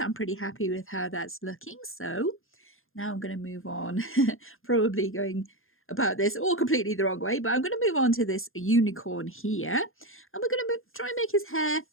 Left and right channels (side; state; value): right; late; 0.60 ms